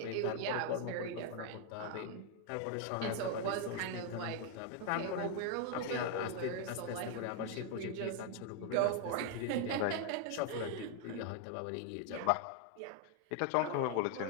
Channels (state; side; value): different; both; correlation 0.01